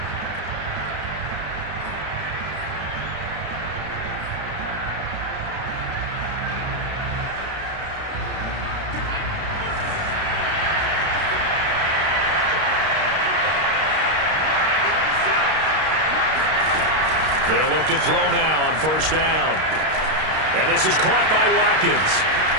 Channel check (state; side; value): late; left; 32 ms